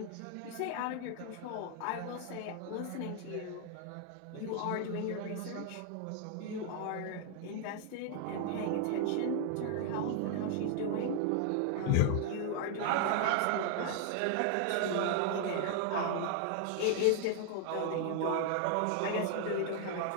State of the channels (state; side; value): different; both; correlation 0.00